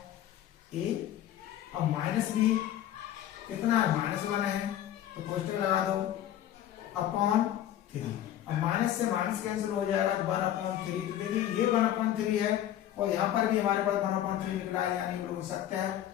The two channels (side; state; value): right; quieter; 11.8 dB